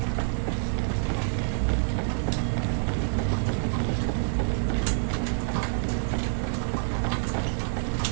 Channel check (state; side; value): silent; left; digital silence